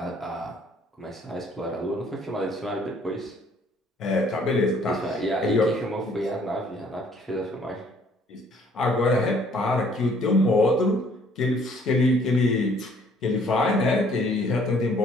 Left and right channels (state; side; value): normal; both; correlation 0.60